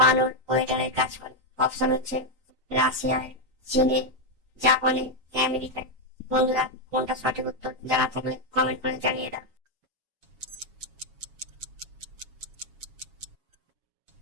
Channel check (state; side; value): late; left; 7.3 ms